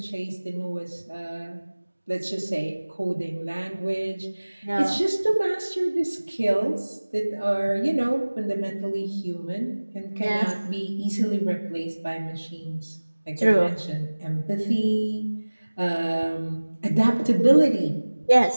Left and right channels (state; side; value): inverted; both; correlation -1.00